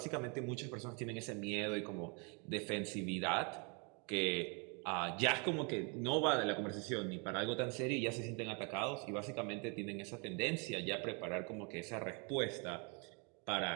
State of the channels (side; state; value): left; quieter; 34.3 dB